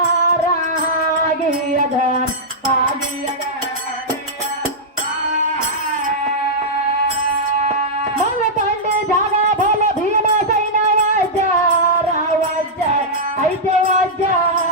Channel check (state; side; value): normal; both; correlation -0.09